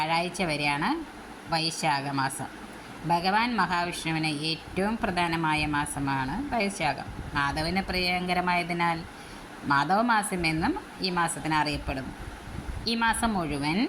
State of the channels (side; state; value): both; identical; correlation 1.00